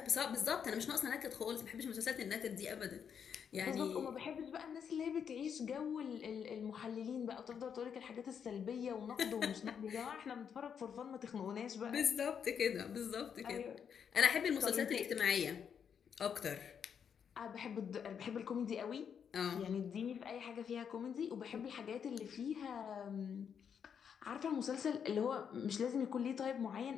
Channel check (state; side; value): quieter; right; 7.5 dB